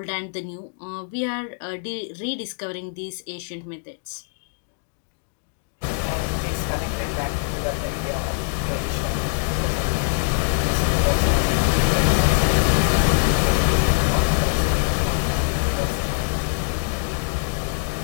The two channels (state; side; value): silent; right; digital silence